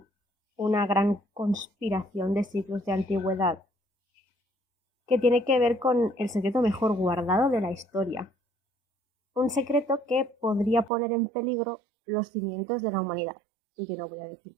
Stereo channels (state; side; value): drops out; left; at 10.9 s